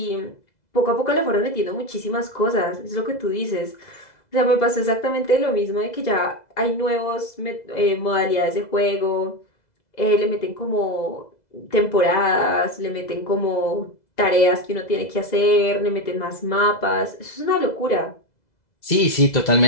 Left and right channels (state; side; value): late; right; 2.0 ms